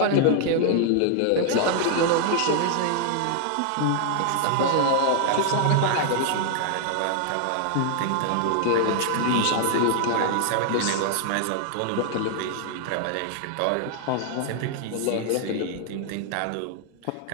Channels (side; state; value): both; different; correlation 0.00